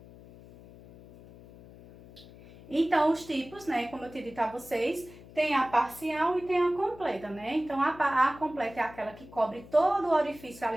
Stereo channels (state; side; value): noise; left; hum, 20 dB below the sound